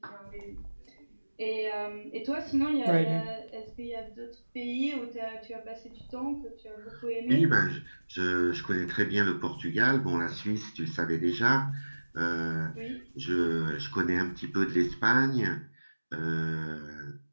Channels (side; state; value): both; inverted; correlation -1.00